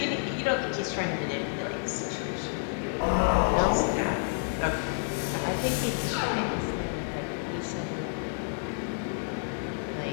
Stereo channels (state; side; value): silent; right; 58 dB below the other